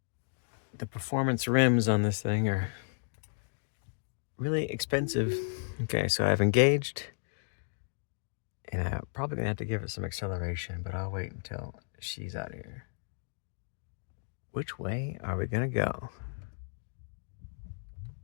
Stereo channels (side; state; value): right; silent; digital silence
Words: performance rims on this thing are really expensive. Okay, so I've engaged, and I'm probably gonna have to give it some acceleration, but I'll wait until she's out of here. Which way are we gonna go?